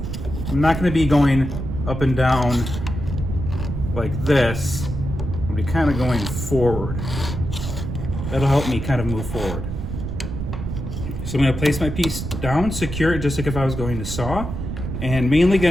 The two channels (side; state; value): right; noise; rumble, 5 dB below the sound